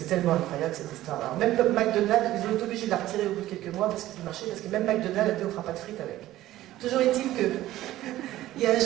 tellement incroyable cette histoire. Alors même McDonald's, ils ont été obligés de la retirer au bout de quelques mois parce qu'il marchait, parce que même McDonald's a dit on fera pas de frites avec. Toujours est-il qu'il y a un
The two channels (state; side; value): quieter; left; 14.9 dB